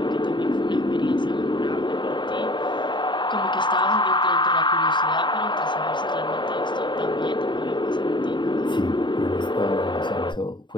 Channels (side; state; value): right; late; 0.22 ms